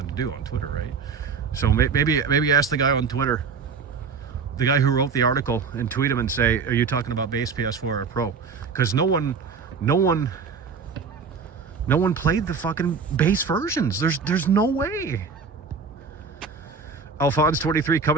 to do on Twitter, right? So maybe ask the guy on Twitter, the guy who wrote the article, and tweet him and say, are you talking about base PS4 or Pro? Because no one played the fucking base versions. There's no way. Alphonse 23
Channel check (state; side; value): quieter; left; 5.4 dB